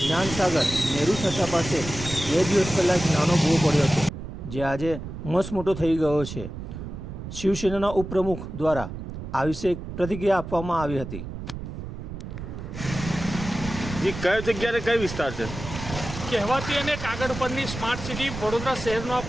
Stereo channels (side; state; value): right; noise; rumble, 9 dB below the sound